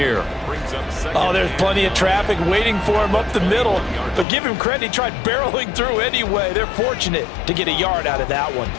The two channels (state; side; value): drops out; right; at 4.2 s